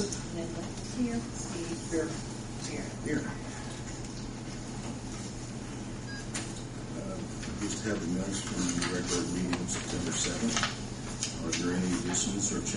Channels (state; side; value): identical; both; correlation 1.00